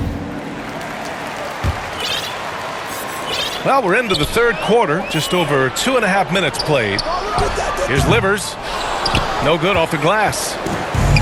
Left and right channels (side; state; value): both; identical; correlation 1.00